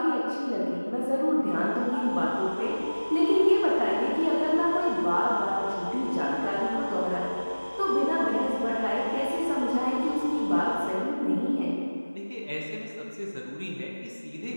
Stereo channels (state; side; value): inverted; both; correlation -1.00